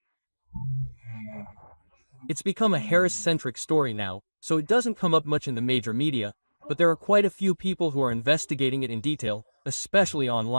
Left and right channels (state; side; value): inverted; both; correlation -1.00